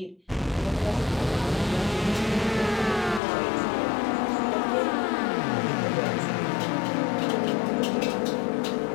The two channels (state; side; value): drops out; right; at 3.2 s